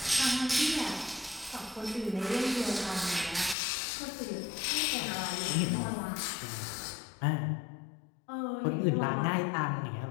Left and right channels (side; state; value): right; drops out; at 3.6 s